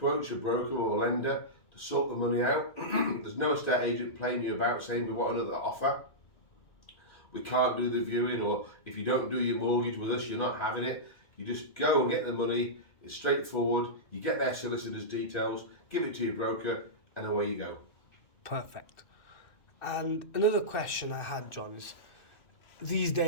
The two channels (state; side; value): late; right; 2.6 ms